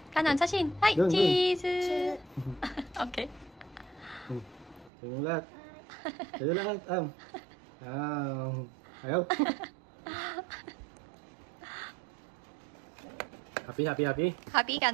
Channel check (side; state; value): left; drops out; at 4.9 s